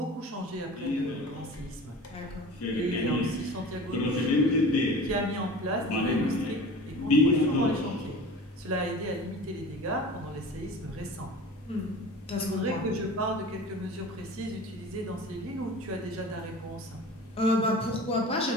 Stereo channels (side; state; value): both; normal; correlation 0.38